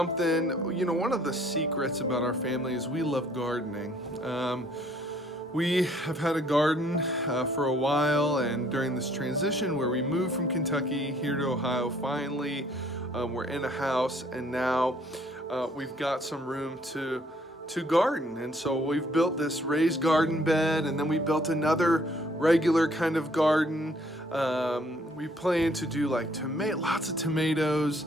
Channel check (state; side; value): normal; both; correlation 0.62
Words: You know, one of the secrets about our family is we love gardening. We have had a garden for a while, and during this transition where we moved from Kentucky here to Ohio, finally we're in a house, and now we've got some room to garden. And so we've built this raised garden bed, and then we built another regular kind of garden. We plan to do like lots of tomatoes,